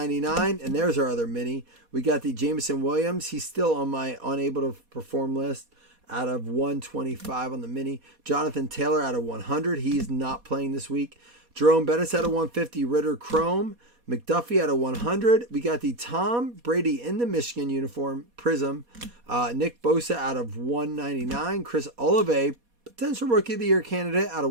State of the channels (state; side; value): late; left; 4.2 ms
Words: and there's our other mini. We got the Jameson Williams. He's still on my unable to perform list. Out of 125 on the mini. Jonathan Taylor out of 100. He's not playing this week. Jerome Bettis out of 150. Ritter Chrome. McDuffie out of 100. We got the Tom Brady in the Michigan uniform. Prism. Nick Bosa out of 199. Chris Olave potential Rookie of the Year candidate out